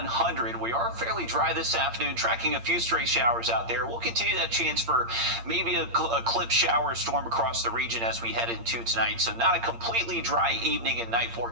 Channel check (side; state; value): left; late; 8.7 ms